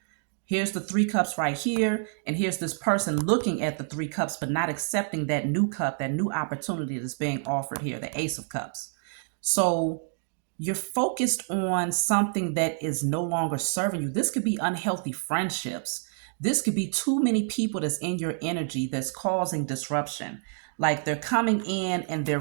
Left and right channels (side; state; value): left; silent; digital silence